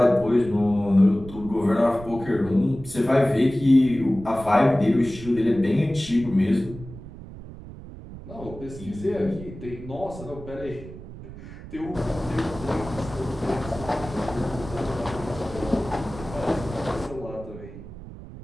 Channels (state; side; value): noise; right; rumble, 14 dB below the sound